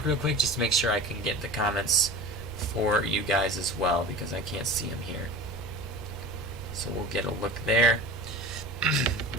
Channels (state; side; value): normal; both; correlation 0.36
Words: real quick just to make sure I can get the comments for you guys as well, because I can't see them here. So we'll get a look there.